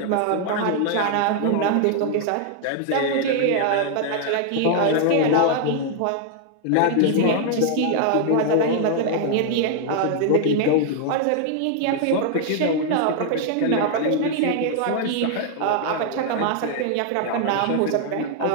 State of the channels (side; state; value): both; different; correlation 0.00